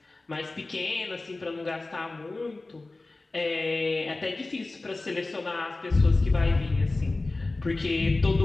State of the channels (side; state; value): right; quieter; 3.2 dB